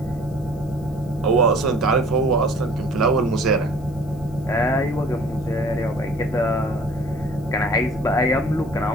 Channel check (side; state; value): left; noise; hiss, 28 dB below the sound